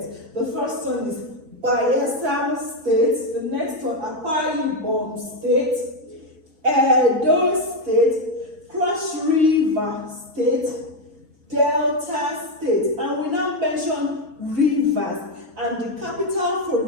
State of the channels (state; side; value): late; left; 6.1 ms